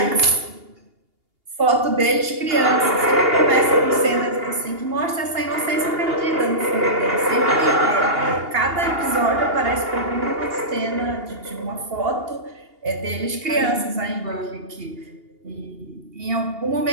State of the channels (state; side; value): late; left; 2.8 ms